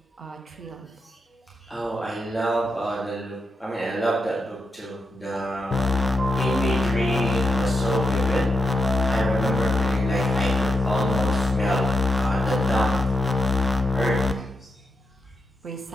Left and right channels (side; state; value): both; normal; correlation 0.85